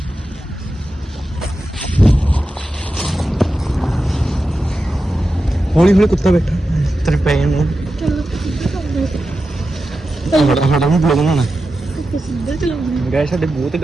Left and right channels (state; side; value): normal; both; correlation 0.91